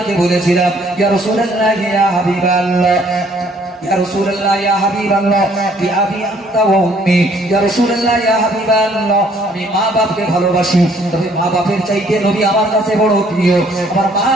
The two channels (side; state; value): both; normal; correlation 0.62